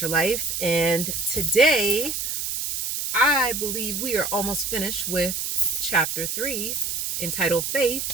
Your Life. And today, I believe we are almost finished with chapter 3 entitled Faith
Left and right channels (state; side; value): noise; right; hiss, 2 dB below the sound